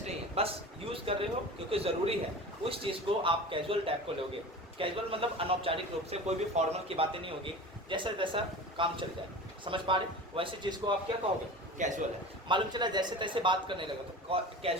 नहीं है, बस यूज़ कर रहे हो क्योंकि ज़रूरी है, उस चीज़ को आप कैजुअल टाइप को लोगे। कैजुअल मतलब अनौपचारिक रूप से, कोई भी फॉर्मल की बातें नहीं होगी, जैसा जैसा काम चल जाए। समझ पा रहे? वैसे चीज़ को आप क्या कहोगे? कैजुअल है। मालूम चला जैसे तैसे बात करने लगा तो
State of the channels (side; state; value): both; normal; correlation 0.35